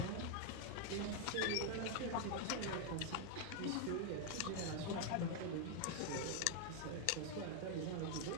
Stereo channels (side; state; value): both; different; correlation 0.01